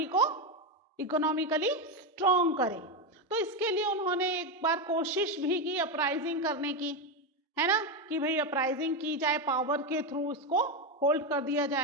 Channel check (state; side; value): normal; both; correlation 0.10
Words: को इकोनॉमिकली स्ट्रॉन्ग करे। तो इसके लिए उन्होंने एक बार कोशिश भी की अपराइजिंग करने की, है ना, कि भाई अपराइजिंग की जाए, पावर के थ्रू इसको होल्ड कर दिया